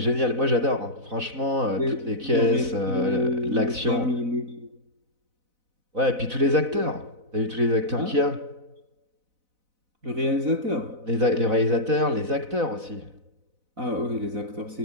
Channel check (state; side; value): late; left; 4.0 ms